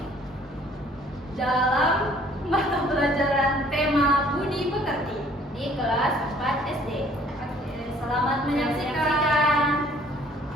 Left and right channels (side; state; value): both; normal; correlation 0.58